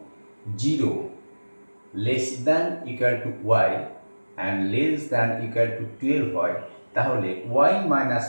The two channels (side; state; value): both; inverted; correlation -1.00